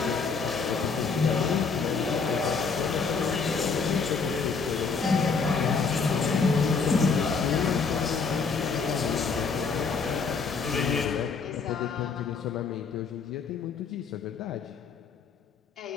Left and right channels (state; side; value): quieter; right; 5.1 dB